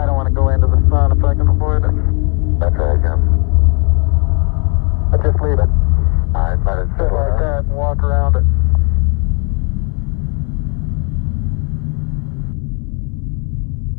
don't want to go into the sun if I can avoid it. That's right, Jim. I'll just leave it. All right, let it Sit like that and walk around it.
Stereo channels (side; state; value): right; quieter; 35.9 dB